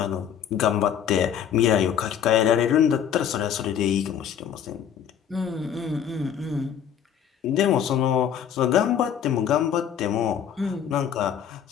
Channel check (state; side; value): quieter; right; 8.9 dB